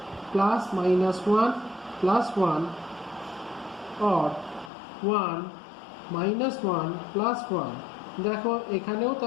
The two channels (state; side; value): drops out; right; at 4.7 s